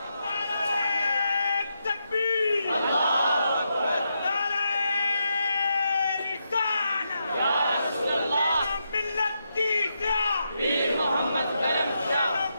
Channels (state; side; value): inverted; both; correlation -0.83